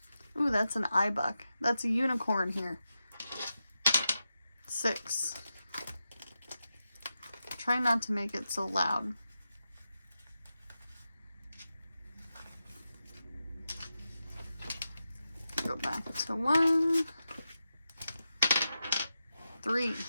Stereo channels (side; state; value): both; inverted; correlation -0.90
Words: Ooh, that's an iBuck. That's a unicorn here. 6. Try not to make it so loud. Go back to 1, 3.